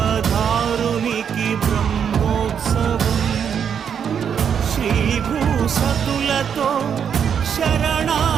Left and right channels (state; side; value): quieter; left; 7.7 dB